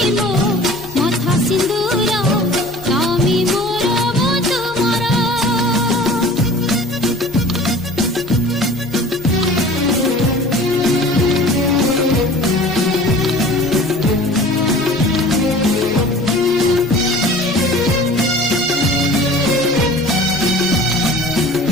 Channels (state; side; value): normal; both; correlation 0.44